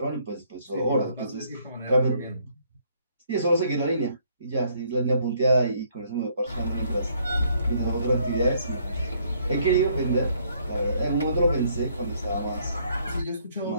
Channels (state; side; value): inverted; both; correlation -0.66